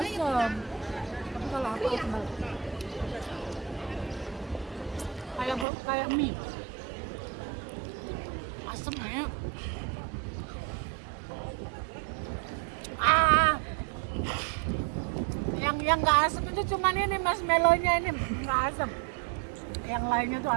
Tapi kalau aku asem banget. Kayak mie. Asem ya. Yang nggak asem itu cuman ini marshmallow-nya, ini nggak asem. Yang lainnya tuh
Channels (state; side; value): drops out; left; at 5.7 s